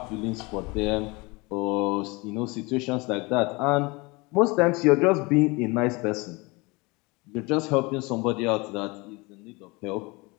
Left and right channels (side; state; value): right; quieter; 25.7 dB